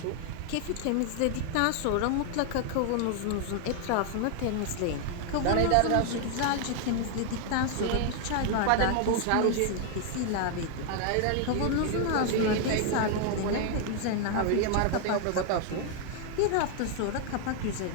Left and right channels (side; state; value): both; different; correlation 0.00